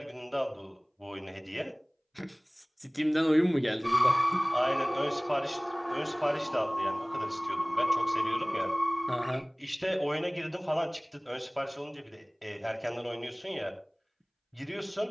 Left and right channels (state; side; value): identical; both; correlation 1.00